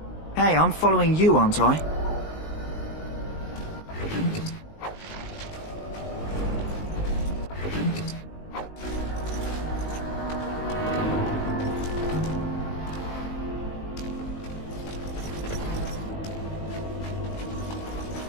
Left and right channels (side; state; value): right; late; 19 ms